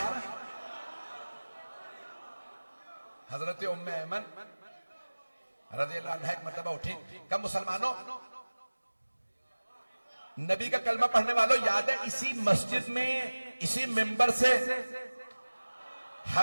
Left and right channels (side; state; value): both; inverted; correlation -1.00